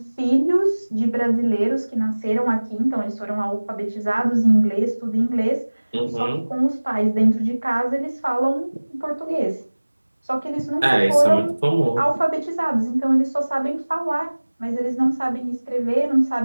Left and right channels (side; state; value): both; inverted; correlation -1.00